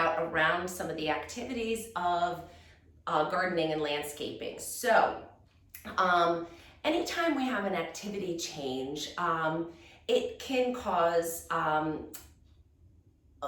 around some of the activities of gardening and landscaping. So anytime we have an activity change, it can cause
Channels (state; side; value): identical; both; correlation 1.00